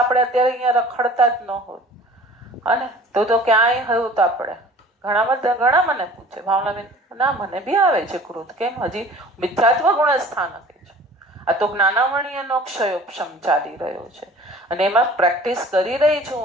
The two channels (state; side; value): normal; both; correlation 0.47